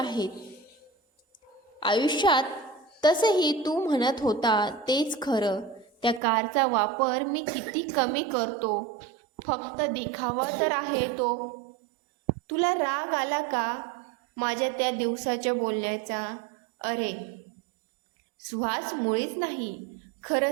आयुष्यात. तसंही तू म्हणत होता तेच खरं. त्या कारचा वापर मी किती कमी करतो, फक्त दिखावा तर आहे तो. तुला राग आला का माझ्या त्या दिवसाच्या बोलण्याचा? अरे सुहास, मुळीच नाही.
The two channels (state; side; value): drops out; left; at 6.2 s